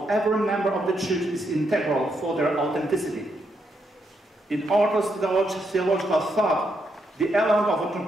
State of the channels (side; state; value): both; normal; correlation 0.79